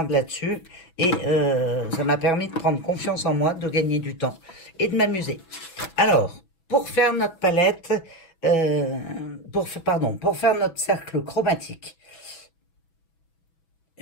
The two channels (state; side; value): late; right; 6.1 ms